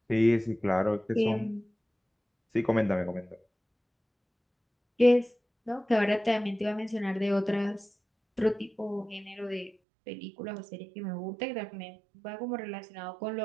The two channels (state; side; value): drops out; left; at 9.8 s